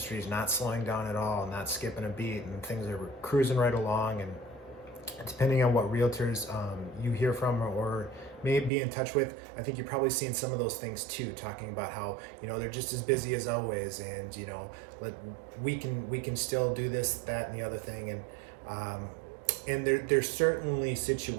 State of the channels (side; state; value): left; drops out; at 8.7 s